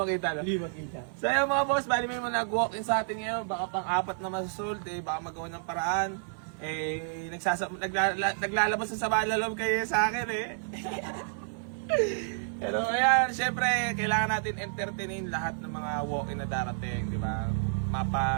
makita, no? Hindi makita. So yun mga boss, bali may mga nag-walk-in sa atin ngayon. Baka pang-apat na masusult, baka magawa ng paraan. Naglalabas sa sama na loob kayo sa akin Pero ayan, syempre, kailangan natin entertainin lahat ng mga walk-in na darating, di ba?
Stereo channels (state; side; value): silent; left; 58 dB below the other